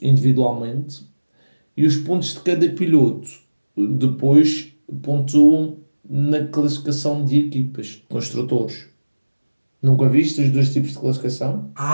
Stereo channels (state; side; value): inverted; both; correlation -1.00